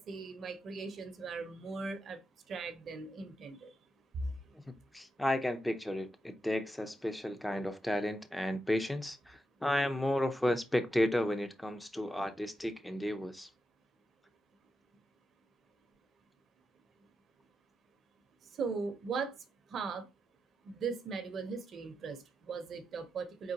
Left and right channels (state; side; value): normal; both; correlation 0.87